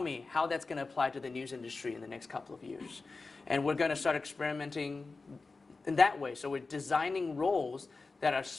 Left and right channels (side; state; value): right; quieter; 3.9 dB